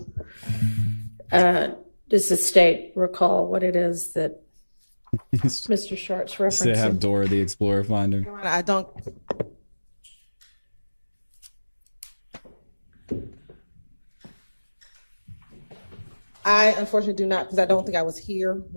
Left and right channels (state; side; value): inverted; both; correlation -1.00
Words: does the state recall what it is that Mr. Sharp's They have referencing? Dora the Explorer finder. I don't. I unfortunately do not, because I don't think I was here